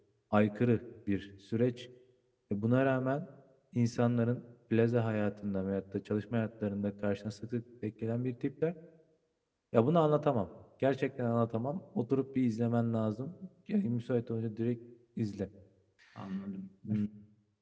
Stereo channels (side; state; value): both; identical; correlation 1.00